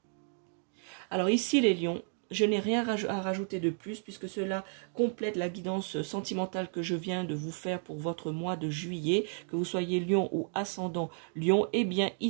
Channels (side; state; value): left; silent; 56 dB below the other